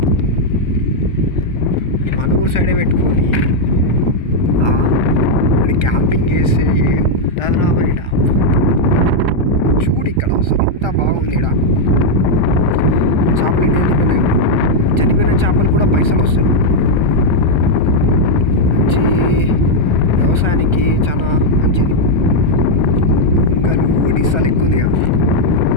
మన ఊరు సైడే పెట్టుకొని క్యాంపింగ్ చేస్తే ఏముంటుంది రా మరి. చూడు ఇక్కడ అసలు ఎంత బాగుంది ఇక్కడ. చేపలు ఎన్ని చనిపోయిన చేపలు కూడా పైసలు వస్తాయి. మంచి వ్యవసాయానికి చాలా మంచిది. కుంకలు ఒడిస్సాలు ఎక్కువ ఉంది.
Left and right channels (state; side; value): late; right; 1.3 ms